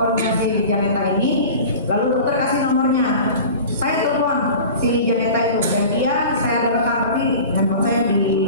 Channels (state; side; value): inverted; both; correlation -0.37